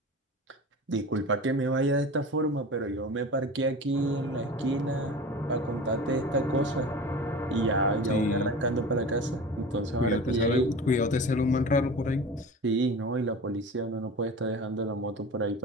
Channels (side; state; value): both; normal; correlation 0.34